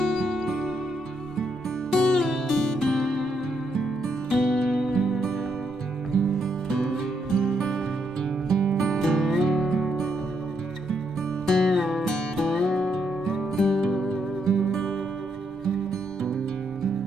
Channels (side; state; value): both; normal; correlation 0.77